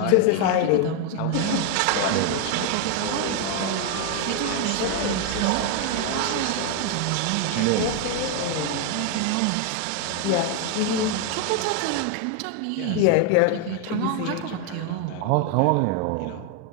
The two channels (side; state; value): both; different; correlation 0.01